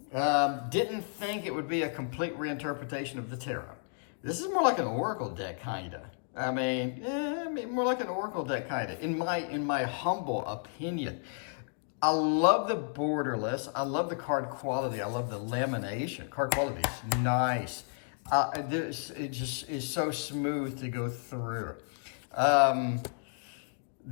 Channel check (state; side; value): silent; right; digital silence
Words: Didn't think it would be a complete reinterpretation of the tarot. This is more like an oracle deck, kind of. I mean, more like an oracle deck, kind of, in my humble opinion. I love the borderless. I love the card quality. I love the lamination. Card quality is nice. It just is so smooth to go through.